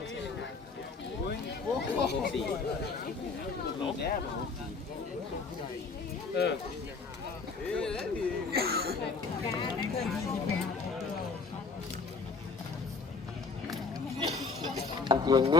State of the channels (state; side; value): quieter; right; 4.4 dB